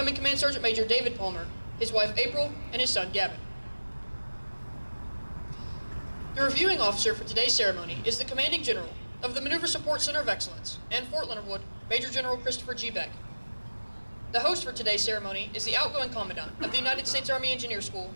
Command Sergeant Major David Palmer, his wife April, and his son Gavin. The reviewing officer for today's ceremony is the Commanding General of the Maneuver Support Center of Excellence and Fort Leonard Wood, Major General Christopher G. Beck. The host for today's ceremony is the outgoing Commandant of the United States Army Engineer School,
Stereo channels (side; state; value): both; inverted; correlation -1.00